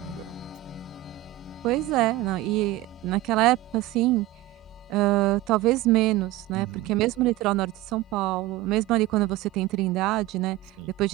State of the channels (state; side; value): quieter; left; 16.8 dB